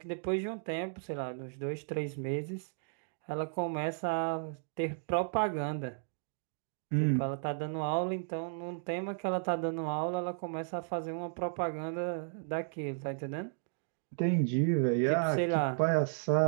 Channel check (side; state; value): left; silent; digital silence